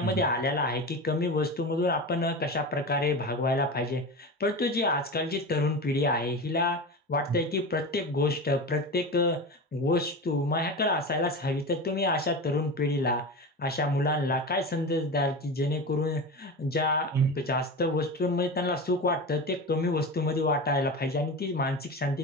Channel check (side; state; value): both; normal; correlation 0.26